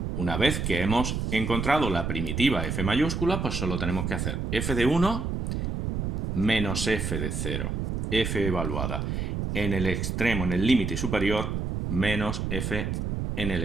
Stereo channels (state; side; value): noise; right; rumble, 2 dB below the sound